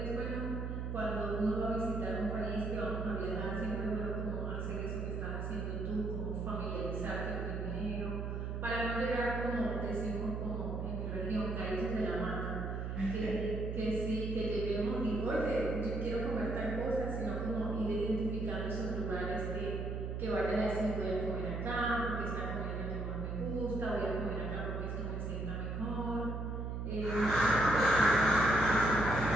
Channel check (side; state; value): right; noise; hum, 3 dB below the sound